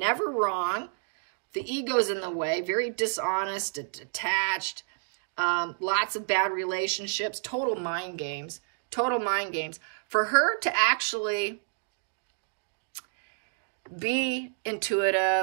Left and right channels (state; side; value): silent; left; digital silence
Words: wrong. The ego's in the way, very dishonest, attached, lots of bad relationships, total mind games, total mind games. For her to actually be